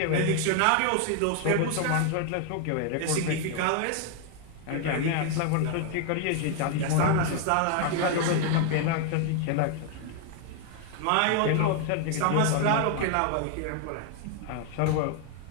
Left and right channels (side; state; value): both; different; correlation 0.00